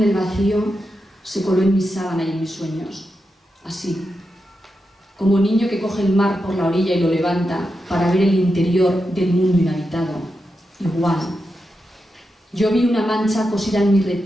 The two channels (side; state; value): both; normal; correlation 0.88